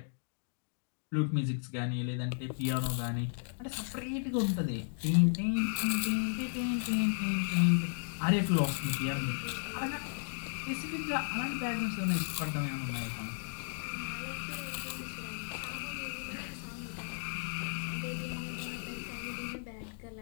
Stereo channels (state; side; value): silent; right; digital silence